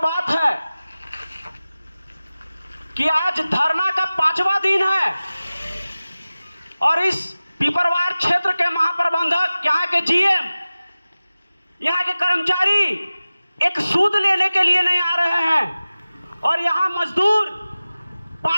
है कि आज धरना का 5वां दिन है और इस पिपरवार क्षेत्र के महाप्रबंधक, यहाँ के जीएम, यहाँ के कर्मचारी एक सूद लेने के लिए नहीं आ रहे हैं और यहाँ मजदूर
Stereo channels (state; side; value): inverted; both; correlation -0.97